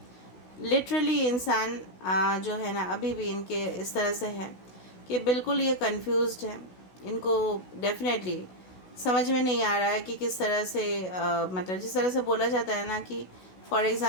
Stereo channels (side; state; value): right; late; 16 ms